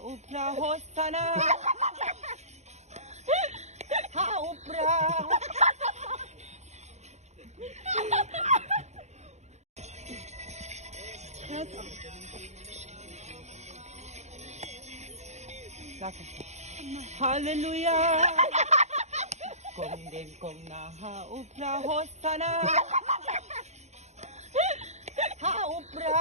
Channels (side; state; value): left; late; 0.33 ms